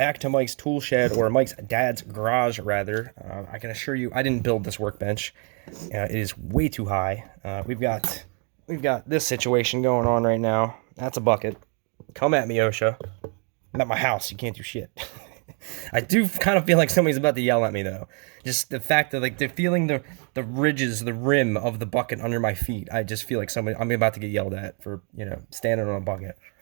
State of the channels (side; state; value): left; quieter; 37.8 dB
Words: to Mike's Tool Shed, or Mike's dad's garage, rather. I can assure you, I didn't build this workbench. It is way too high. We've got this situation going on right now. That's a bucket. Come at me, OSHA. I'm at my house. You can't do shit. I do kind of feel like somebody's about to yell at me, though. Just the fact that, like, they're feeling the ridges, the rim of the bucket under my feet. I just feel like I'm about to get yelled at for, standing on a bucket.